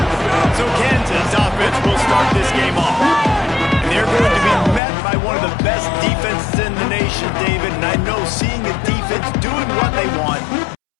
So Kansas offense will start this game off. And they're going to be met by one of the best defenses in the nation, David. And I know seeing a defense doing what they want,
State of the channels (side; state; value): right; drops out; at 4.8 s